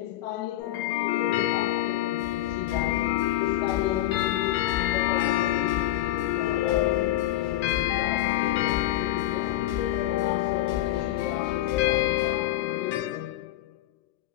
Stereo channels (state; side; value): quieter; right; 14.5 dB